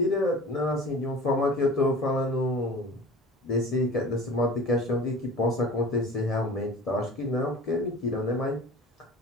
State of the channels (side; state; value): both; normal; correlation 0.40